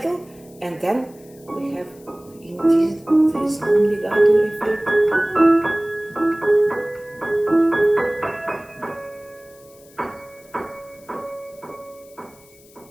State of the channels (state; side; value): noise; left; hiss, 26 dB below the sound